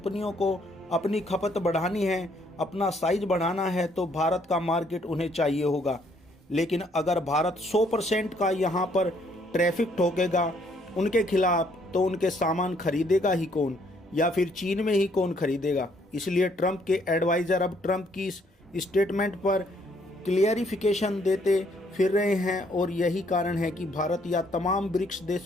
को अपनी खपत बढ़ानी है, अपना साइज बढ़ाना है, तो भारत का मार्केट उन्हें चाहिए होगा। लेकिन अगर भारत 100% का यहाँ पर ट्रैफिक ठोकेगा उनके खिलाफ, तो उनके सामान खरीदेगा ही कौन, या फिर चीन में ही कौन खरीदेगा? इसलिए ट्रंप के एडवाइज़र अब ट्रंप की इस स्टेटमेंट पर क्लियरिफिकेशन देते फिर रहे हैं, और यही कारण है कि भारत या तमाम ब्रिक्स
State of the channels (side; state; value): both; normal; correlation 0.67